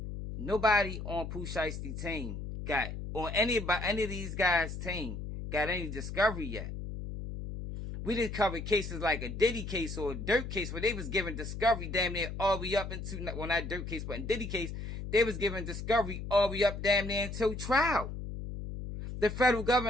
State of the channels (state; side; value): noise; left; hum, 7 dB below the sound